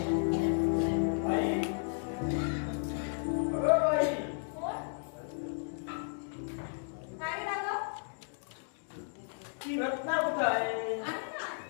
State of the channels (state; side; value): silent; right; digital silence